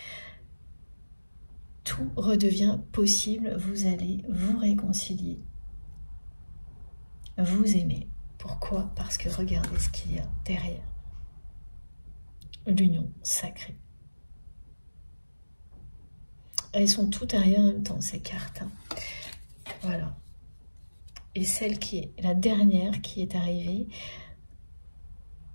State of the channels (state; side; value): inverted; both; correlation -1.00